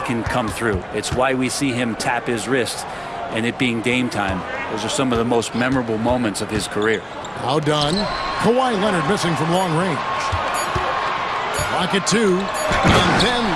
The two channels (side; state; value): both; identical; correlation 1.00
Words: come through. It's why we see him tap his wrist, and it being game time. Those are some of the most memorable moments of his career. Now done. Kawhi Leonard missing from long range. Clock at 2, and then